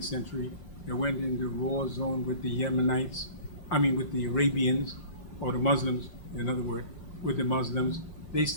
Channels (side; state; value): right; late; 6.2 ms